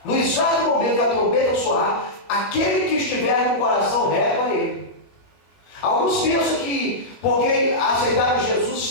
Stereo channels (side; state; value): right; late; 21 ms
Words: no exato momento que a trombeta soar, aquele que estiver no coração reto a Ele. Alguns pensam que porque aceitaram Jesus